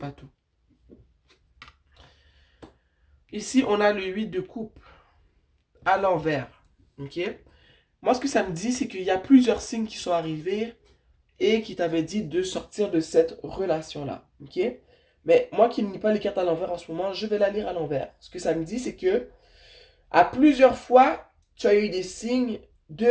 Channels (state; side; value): identical; both; correlation 1.00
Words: tout. Ici, on a le 8 de coupe à l'envers. Ok? Moi, ce que ça me dit, c'est qu'il y a plusieurs signes qui sont arrivés et qui t'avaient dit de sortir de cette relation-là. Ok? Mais moi qui ne lis pas les cartes à l'envers en ce moment, je vais la lire à l'envers. Ce que ça me dit, c'est que à plusieurs fois, tu as eu des signes